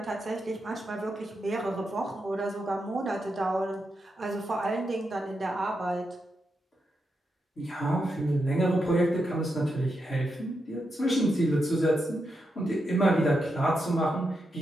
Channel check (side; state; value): both; normal; correlation 0.85